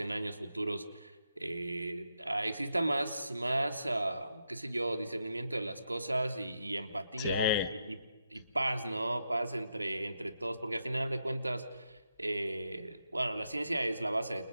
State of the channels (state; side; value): inverted; both; correlation -0.83